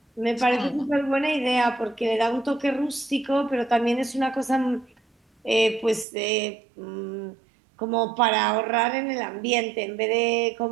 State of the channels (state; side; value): drops out; left; at 6.1 s